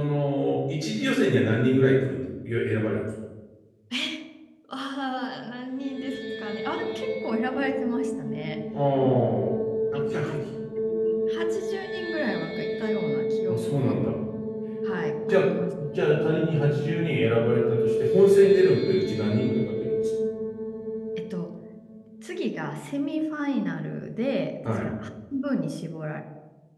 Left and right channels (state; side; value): identical; both; correlation 1.00